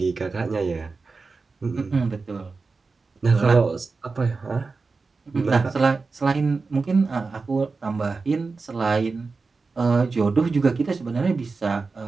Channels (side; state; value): left; quieter; 4.2 dB